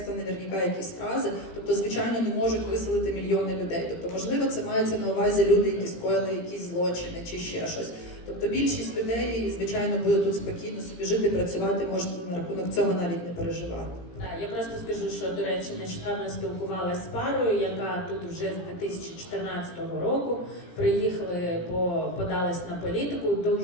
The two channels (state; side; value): late; right; 17 ms